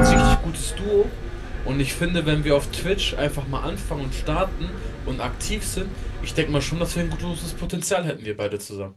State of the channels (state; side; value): identical; both; correlation 1.00